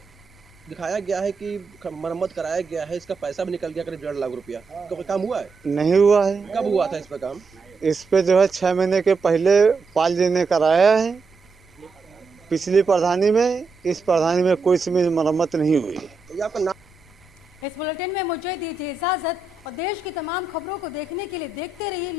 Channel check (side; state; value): left; quieter; 4.1 dB